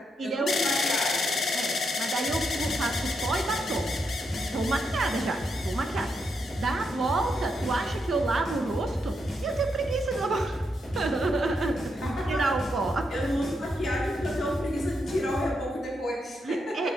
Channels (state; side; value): normal; both; correlation 0.81